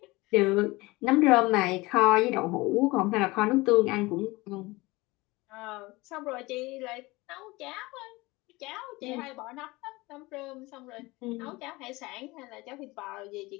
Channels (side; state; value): right; quieter; 22.0 dB